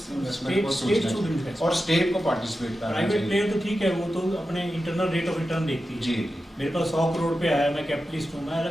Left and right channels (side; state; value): both; normal; correlation 0.91